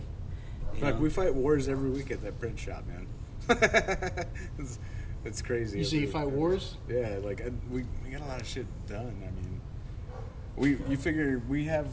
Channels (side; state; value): both; identical; correlation 1.00